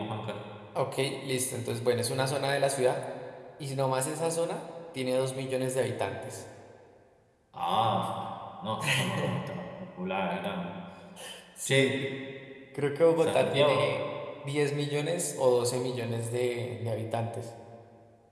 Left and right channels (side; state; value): both; identical; correlation 1.00